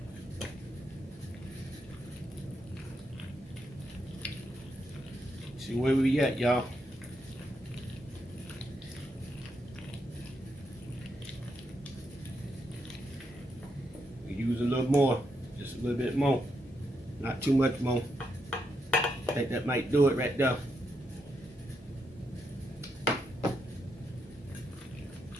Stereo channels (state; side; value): normal; both; correlation 0.81